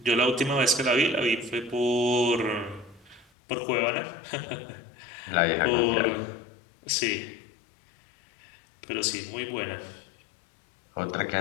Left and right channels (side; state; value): right; drops out; at 3.2 s